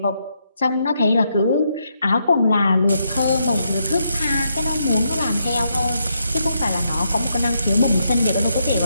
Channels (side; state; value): both; inverted; correlation -0.79